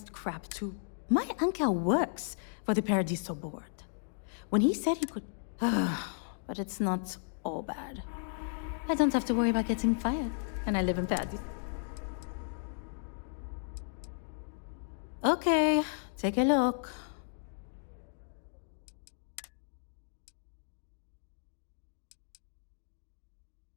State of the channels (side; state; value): right; silent; digital silence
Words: crap to... My uncle works for the Paradiso board. When he said he could... but it's not all bad. I don't have to worry about getting fired, and I live in Paradiso. Okay, take a look.